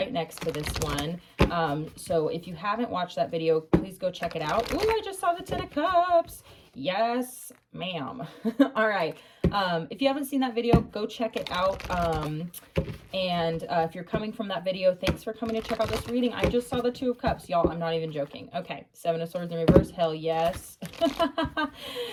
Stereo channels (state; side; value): identical; both; correlation 1.00